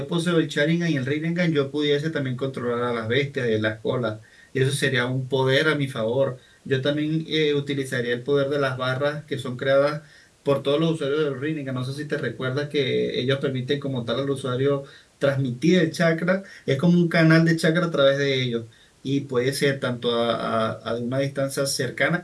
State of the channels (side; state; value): both; identical; correlation 1.00